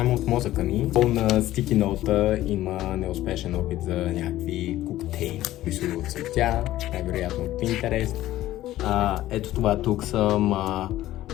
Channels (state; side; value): quieter; right; 14.8 dB